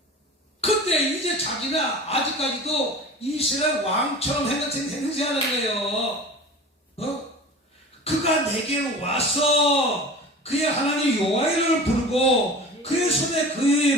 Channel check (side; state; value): both; normal; correlation 0.37